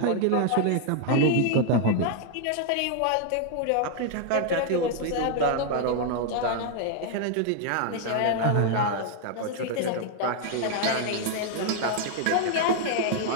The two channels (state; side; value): different; both; correlation 0.00